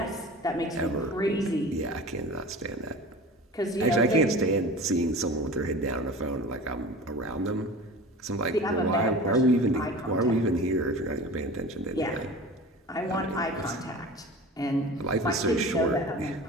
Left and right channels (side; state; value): both; normal; correlation 0.37